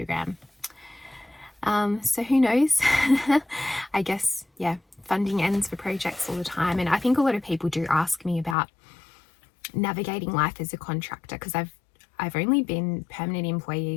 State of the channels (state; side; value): drops out; right; at 8.6 s